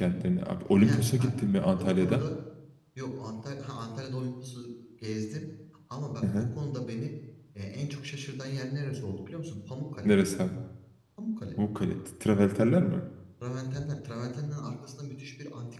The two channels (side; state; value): both; identical; correlation 1.00